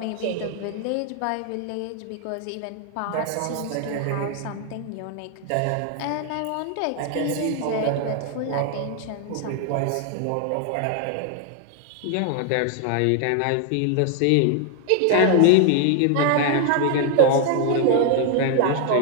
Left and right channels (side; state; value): both; different; correlation 0.00